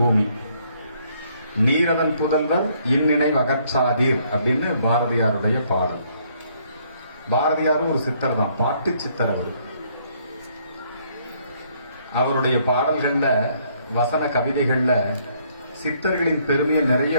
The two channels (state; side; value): inverted; both; correlation -0.67